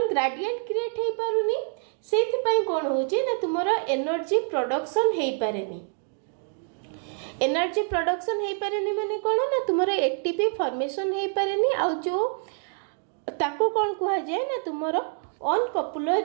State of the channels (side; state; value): left; silent; 56 dB below the other